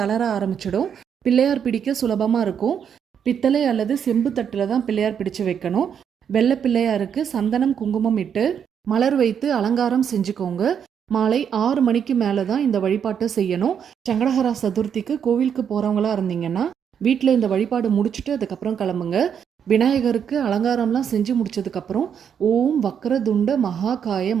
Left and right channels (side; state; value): left; quieter; 7.9 dB